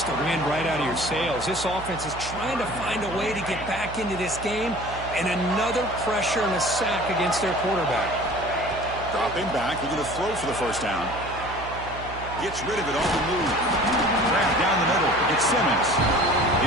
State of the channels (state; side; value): noise; right; hum, 12 dB below the sound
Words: the wind right out of your sails. This offense is trying to find a way to get back into this game, and another pressure and a sack against their quarterback. Dropping back, looking to throw for the first down. Gets rid of it on the move. Grab down the middle. It's Simmons.